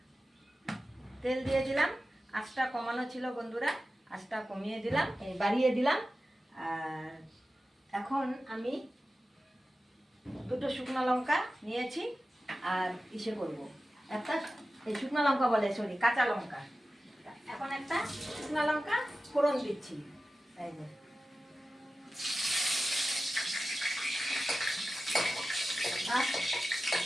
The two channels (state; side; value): normal; both; correlation 0.94